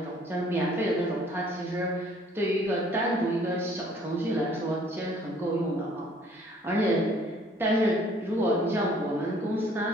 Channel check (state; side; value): normal; both; correlation 0.58